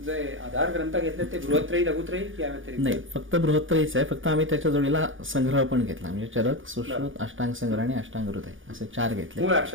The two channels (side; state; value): left; late; 0.57 ms